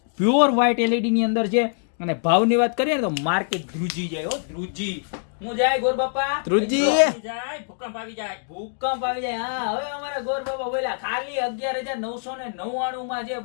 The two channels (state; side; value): silent; right; digital silence